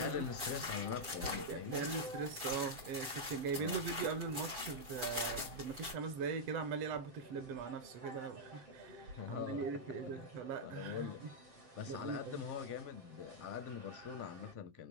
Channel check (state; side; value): late; left; 7.6 ms